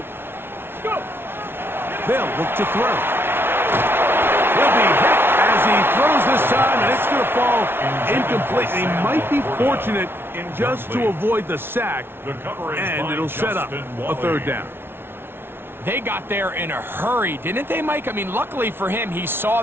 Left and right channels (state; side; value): late; left; 0.11 ms